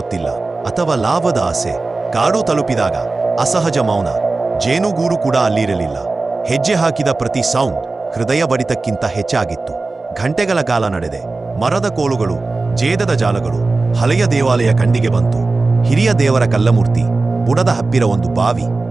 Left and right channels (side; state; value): left; quieter; 3.5 dB